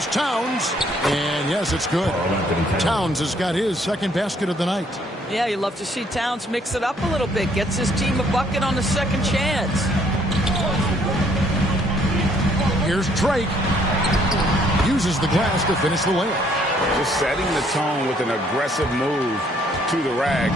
Towns, and yes, it's good. Towns has got his second basket of the night. Yeah, you love to see Towns mix it up a little bit. Gets his team a bucket on the second chance. Here's Drake. Uses the glass to finish the layup. Just setting the tone with an aggressive move to the rack,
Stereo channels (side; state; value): both; normal; correlation 0.65